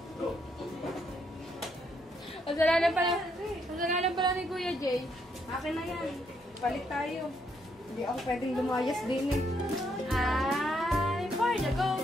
Kasalanan pala ni Kuya Jay. Akin na yan. Palit tayo. Hindi ako pwedeng lumayas din eh. Ay, for the go!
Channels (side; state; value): both; normal; correlation 0.74